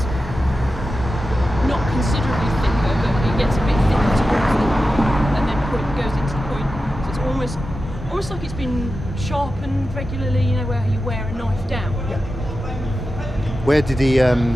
not considerably thicker, but it gets a bit thicker towards the and then goes into the point. So it's almost like it's been sharpened regularly, you know, where you wear a knife down. Yeah. Where did he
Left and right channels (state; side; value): normal; both; correlation 0.92